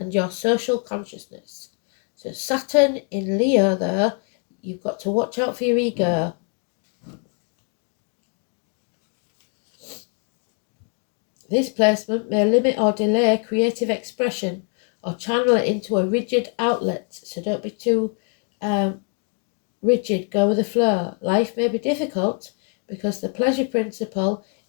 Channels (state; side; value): quieter; right; 39.3 dB